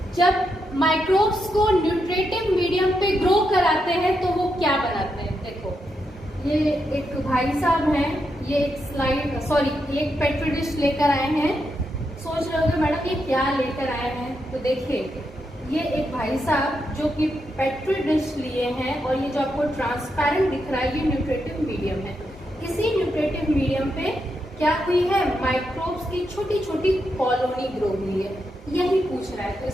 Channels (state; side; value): normal; both; correlation 0.83